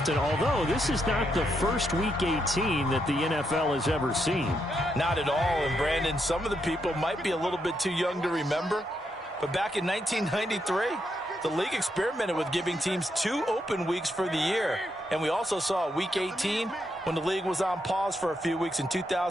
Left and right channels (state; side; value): normal; both; correlation 0.80